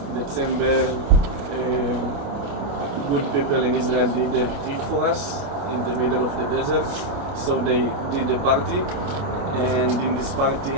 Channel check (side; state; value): left; late; 29 ms